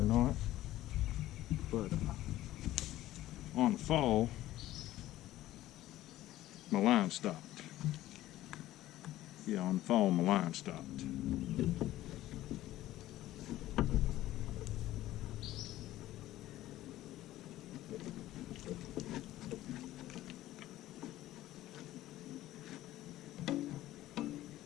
not, but on the fall, my line stopped. Yeah, on the fall, my line stopped.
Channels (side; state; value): right; quieter; 15.0 dB